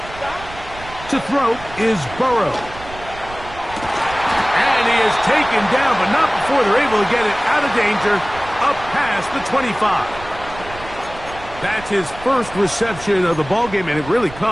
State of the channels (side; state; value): right; noise; rumble, 15 dB below the sound